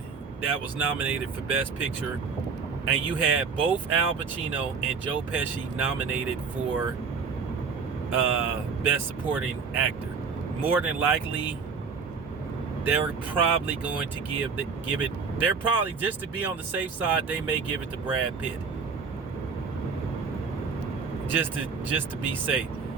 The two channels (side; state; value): left; quieter; 5.3 dB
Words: that was nominated for Best Picture, and you had both Al Pacino and Joe Pesci nominated for Best Supporting Actor. More than likely, they're probably going to give it. They're probably, just to be on the safe side, they may give it to Brad Pitt. Just to be safe,